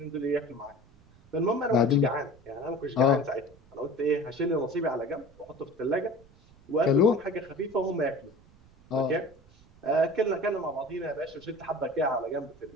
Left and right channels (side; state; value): right; noise; rumble, 26 dB below the sound